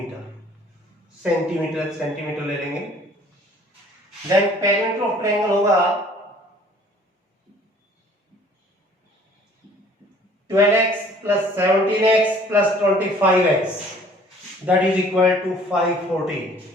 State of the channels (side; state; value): both; normal; correlation 0.54